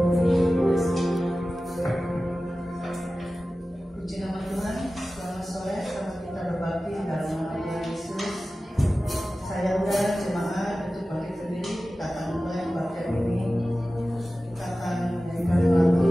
nama Tuhan, selamat sore, selamat kita berbakti dalam nama Tuhan Yesus. Saya undang jemaat untuk bagi sendiri, kita akan mulai kebaktian ini. Kita akan menyanyikan lagu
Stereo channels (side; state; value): both; normal; correlation 0.95